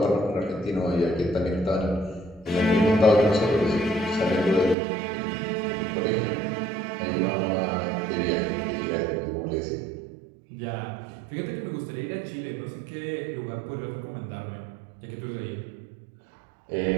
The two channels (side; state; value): left; drops out; at 4.8 s